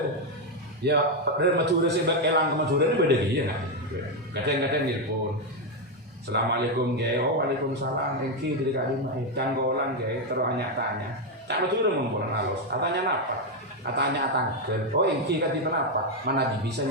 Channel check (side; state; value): both; normal; correlation 0.04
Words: ya dari Madura sebab elang ke Madura ini beda dia kan kadang-kadang telepon Assalamualaikum gaya waalaikumsalam engki dari kalimah canggolan gaya terus tanya cak Madura mempunyai halus katanya apa katanya tangkel engki kati kenapa mana